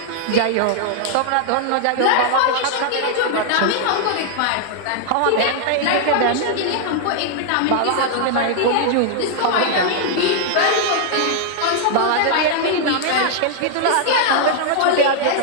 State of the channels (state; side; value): different; both; correlation -0.01